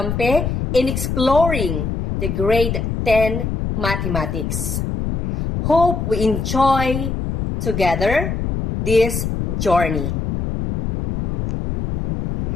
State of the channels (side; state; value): left; noise; rumble, 3 dB below the sound